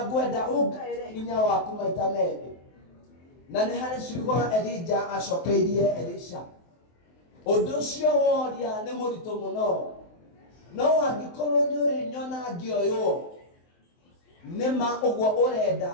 ngwenda ũngaĩre hinya waku maita merĩ. na nĩ harĩ ciugo Elija acokeirie Elisha. Ũndũ ũcio woria nĩ mũritũ mũno, no angĩkorwo nĩ ũrĩ nyona ngĩoywo nĩma ũguo ũrenda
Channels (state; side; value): late; right; 23 ms